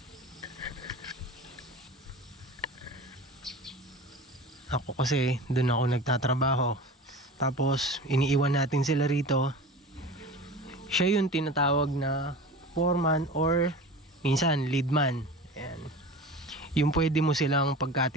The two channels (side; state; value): both; normal; correlation 0.35